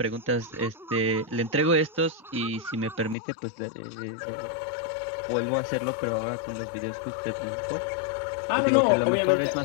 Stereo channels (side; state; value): right; drops out; at 3.2 s